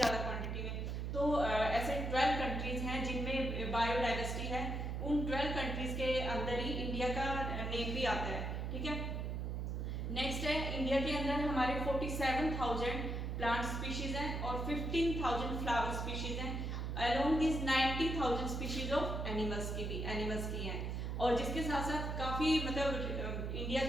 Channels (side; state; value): right; noise; hum, 2 dB below the sound